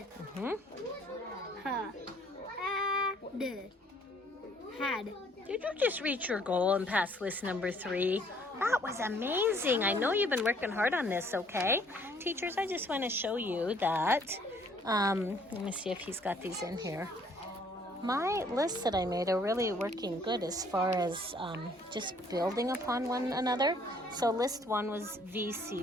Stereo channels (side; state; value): both; normal; correlation 0.61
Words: Mm-hmm. Had. Did you just reach your goal and pass list number 3? That was amazing. I know you've been working hard on this, okay? Teachers, I just want to show you that. Let me see if he's got these in here. My lists that I made are really working good as far as just building upon one another. So list 1 was VC